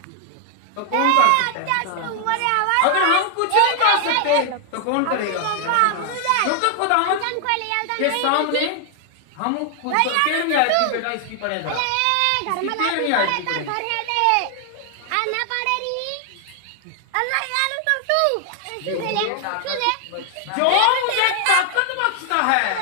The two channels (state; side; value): different; both; correlation 0.00